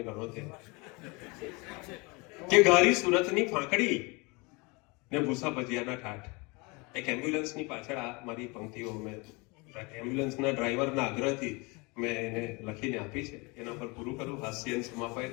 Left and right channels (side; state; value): right; quieter; 27.6 dB